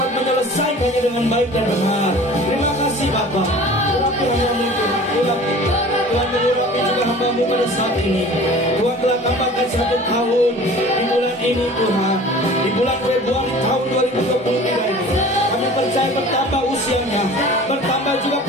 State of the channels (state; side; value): normal; both; correlation 0.43